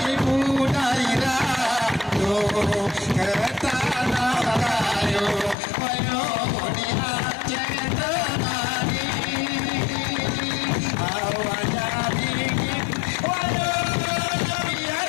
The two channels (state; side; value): drops out; right; at 5.6 s